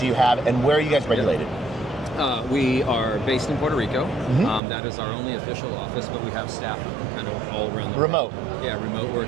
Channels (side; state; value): left; drops out; at 4.6 s